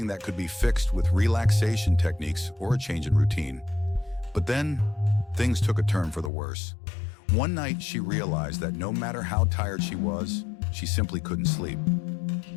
that could be fixed with relaxation techniques or a change in routine. But then, things took a turn for the worse. One night, she realized that no matter how tired she was, she simply couldn't sleep.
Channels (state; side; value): drops out; right; at 6.3 s